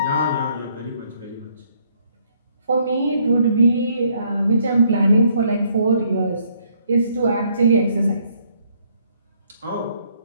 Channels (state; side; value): inverted; both; correlation -0.68